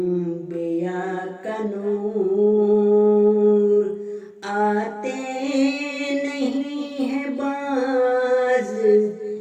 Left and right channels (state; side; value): identical; both; correlation 1.00